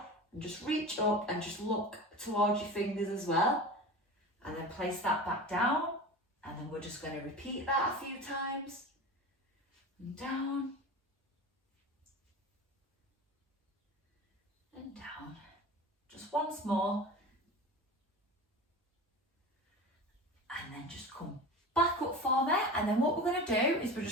and just reach up and just look towards your fingers as well. And then place that back down. And then we're just going to repeat that a few times. And down. And down. Just once more. And then just come back up for me. And then what we're going to do is we're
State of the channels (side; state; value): both; normal; correlation 0.32